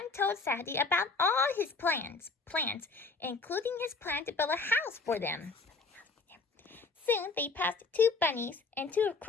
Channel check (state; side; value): quieter; right; 4.0 dB